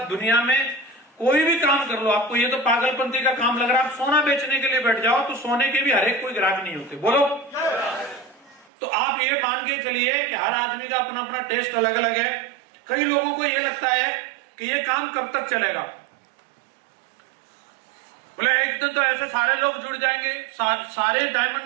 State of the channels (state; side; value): drops out; left; at 8.7 s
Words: दुनिया में कोई भी काम कर लो, आपको ये तो पागलपंती का काम लग रहा है, आप सोना बेचने के लिए बैठ जाओ तो सोने के भी हर एक कोई ग्राहक नहीं होते। बोलो। तो आप ये मान के चलिए कि हर आदमी का अपना अपना टेस्ट अलग अलग है। कई लोगों को ये लगता है कि ये काम कब तक चलेगा। बोले एक दिन तो ऐसे सारे लोग जुड़ जाएंगे, सारे